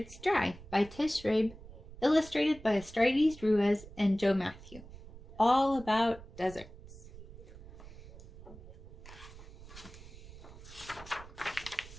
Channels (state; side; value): noise; right; rumble, 17 dB below the sound